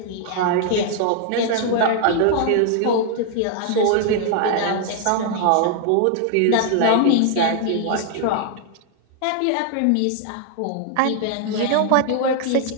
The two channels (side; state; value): both; different; correlation 0.00